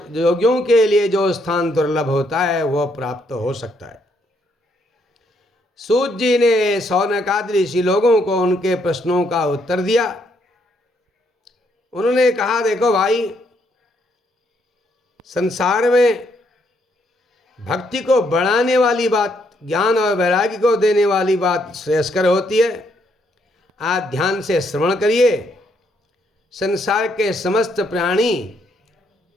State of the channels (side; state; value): both; normal; correlation 0.73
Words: के लिए जो स्थान दुर्लभ होता है वह प्राप्त हो सकता है। सूत जी ने शौनकादि ऋषि लोगों को उनके प्रश्नों का उत्तर दिया। उन्होंने कहा, देखो भाई, संसार में भक्ति को बढ़ाने वाली बात, ज्ञान और वैराग्य को देने वाली बात श्रेयस्कर होती है। आप ध्यान से श्रवण करिए। संसार के समस्त प्राणी